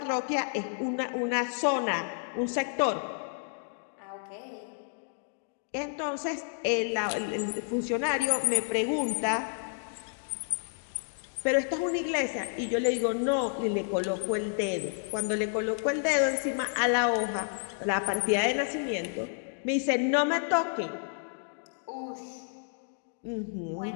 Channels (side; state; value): right; silent; digital silence